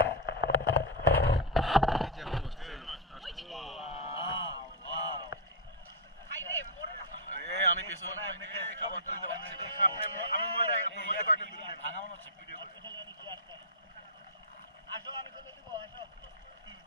এই যে এখন বসতেছে এই আমি পেছনে খাবার তুলতে পারছি আমি মনে আপনার মধ্যে কয়েকটা দিন ভাঙা মনে হচ্ছে ভিডিও করে আসো আমি তুলে দিব আসো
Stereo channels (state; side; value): normal; both; correlation -0.04